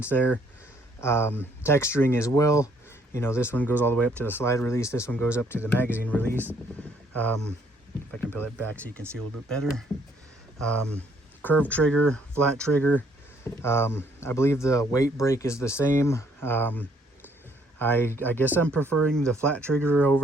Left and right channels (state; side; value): normal; both; correlation 0.66